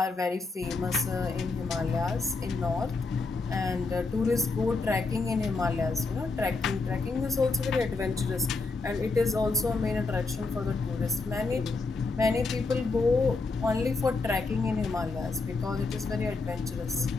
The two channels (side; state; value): right; quieter; 3.8 dB